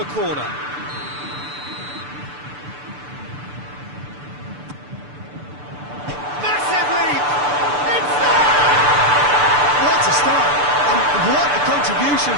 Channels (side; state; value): left; late; 6.8 ms